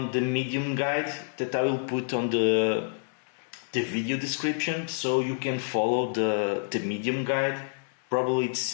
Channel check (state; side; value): silent; right; digital silence